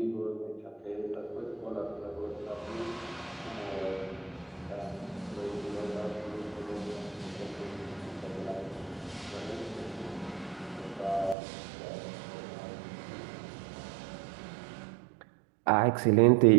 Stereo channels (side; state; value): left; drops out; at 11.4 s